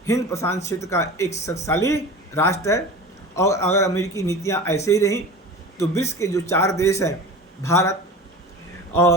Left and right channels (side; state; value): both; normal; correlation 0.35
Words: हिंद प्रशांत क्षेत्र का एक शक्तिशाली राष्ट्र है और अगर अमेरिकी नीतियां ऐसे ही रहीं तो विश्व के जो 4 देश हैं, भारत